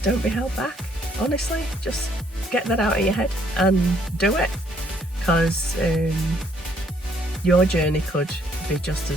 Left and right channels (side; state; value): both; normal; correlation 0.67